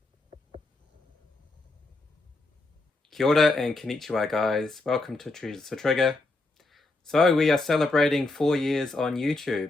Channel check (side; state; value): right; quieter; 3.1 dB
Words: Kia ora and konnichiwa guys, welcome to Treasures to Trigger. So we are celebrating 4 years on